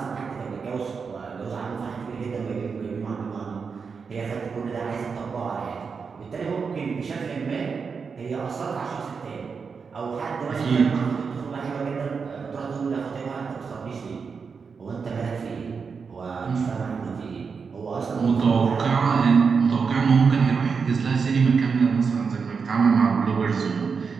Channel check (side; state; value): left; quieter; 5.5 dB